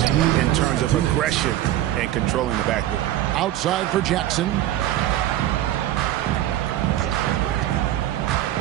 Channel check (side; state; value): left; quieter; 13.3 dB